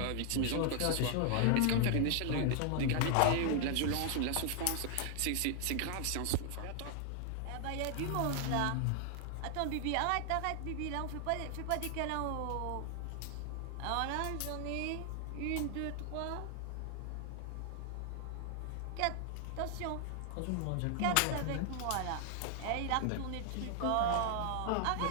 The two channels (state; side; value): different; both; correlation 0.00